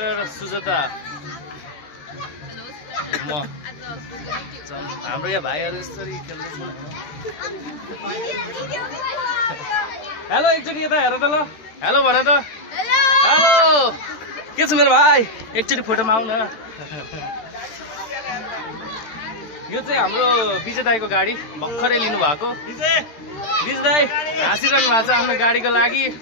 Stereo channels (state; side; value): late; right; 13 ms